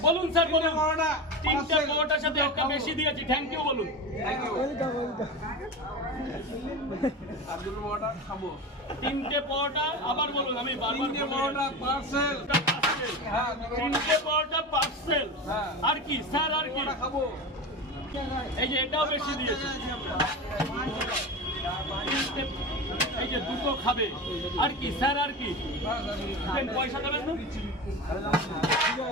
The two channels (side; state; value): both; normal; correlation 0.25